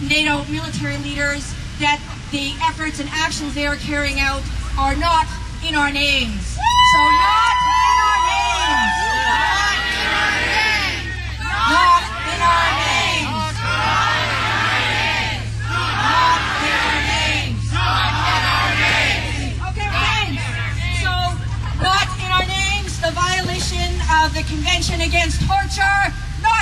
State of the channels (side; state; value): both; identical; correlation 1.00